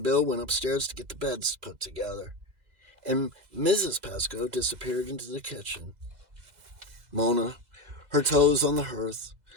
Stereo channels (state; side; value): late; left; 2.0 ms